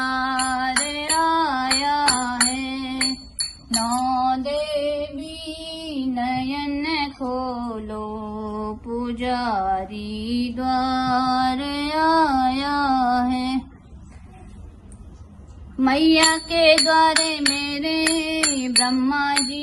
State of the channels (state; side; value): identical; both; correlation 1.00